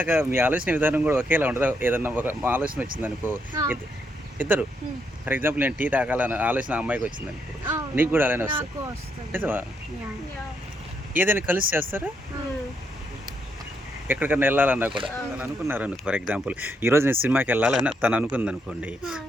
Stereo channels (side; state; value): both; normal; correlation 0.77